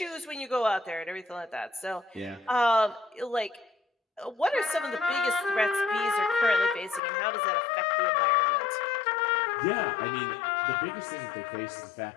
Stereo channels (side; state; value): right; drops out; at 7.0 s